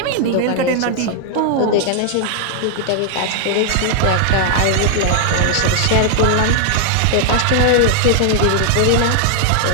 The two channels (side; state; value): both; different; correlation 0.00